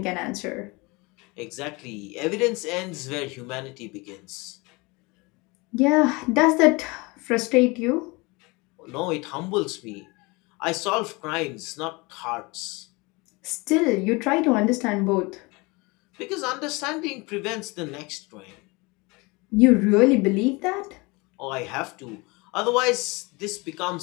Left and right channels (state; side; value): quieter; right; 25.9 dB